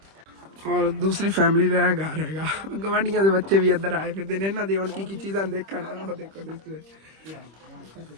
ਔਰ ਦੂਸਰੀ ਫੈਮਿਲੀ ਦਾ ਇਹ ਘਰ ਹੈਗਾ ਗਵਾਂਢੀਆਂ ਦੇ ਬੱਚੇ ਵੀ ਇੱਧਰ ਆਏ ਫਿਰਦੇ ਨੇ ਇਹਨਾਂ ਦੀ ਹੁਣ ਕੀ ਚੀਜ਼ਾਂ ਦੇਖਣ ਉਹ ਦੇਖੋ ਤੁਸੀਂ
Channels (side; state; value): left; late; 25 ms